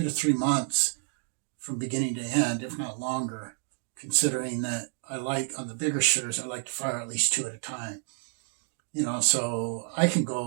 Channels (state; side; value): silent; left; 58 dB below the other